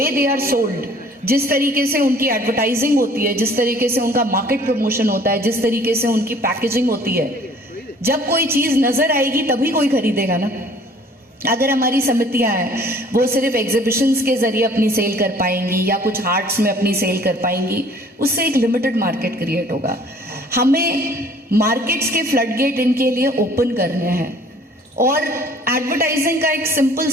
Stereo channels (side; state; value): both; normal; correlation 0.54